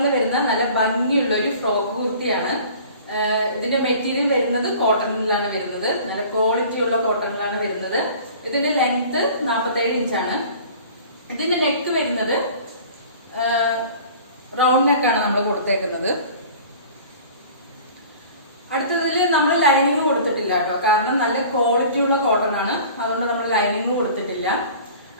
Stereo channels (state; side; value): inverted; both; correlation -0.45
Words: വരുന്ന നല്ല ഭംഗിയുള്ള ഒരു ഫ്രോക്ക് കുർത്തിയാണ്. ഇതിന്റെ മെറ്റീരിയൽ വരുന്നത് കോട്ടണിലാണ് വരുന്നത്. നല്ല ക്വാളിറ്റി ഉള്ള കോട്ടണിലാണ് വരുന്നത്. ഇതിന്റെ ലെങ്ത് 47 ഇഞ്ചാണ്. ഇതിന്റെ നെക്ക് വരുന്നത് റൗണ്ട് നെക്കാണ് നമ്മൾ കൊടുത്തേക്കുന്നത്. അടുത്തതിൽ നമ്മൾ ലൈനിങ് കൊടുത്തിട്ടില്ല കേട്ടോ, കാരണം നല്ല ക്വാളിറ്റി ഉള്ള കോട്ടൺ ആണ്, അതുകൊണ്ട് നമ്മൾ ലൈനിങ് കൊടുത്തിട്ടില്ല.